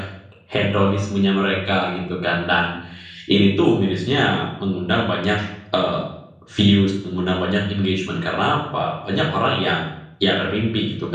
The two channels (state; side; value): identical; both; correlation 1.00